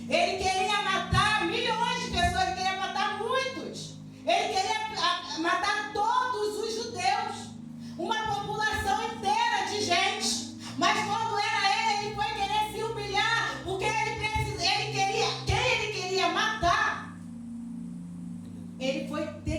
Ele queria matar milhões de pessoas, ele queria matar muitos. Ele queria matar todos os judeus, uma população inteira de gente. Mas quando era ele foi querer se humilhar, porque quem ele queria matar, ele foi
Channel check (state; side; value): identical; both; correlation 1.00